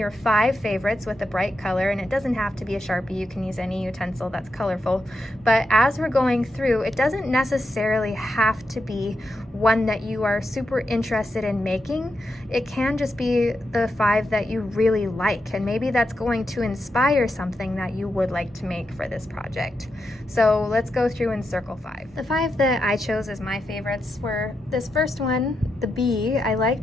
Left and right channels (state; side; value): normal; both; correlation 0.86